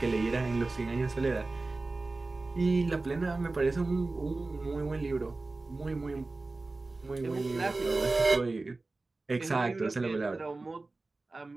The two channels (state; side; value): quieter; left; 3.3 dB